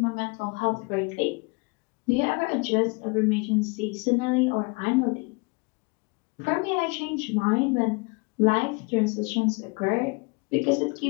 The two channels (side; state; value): right; quieter; 29.7 dB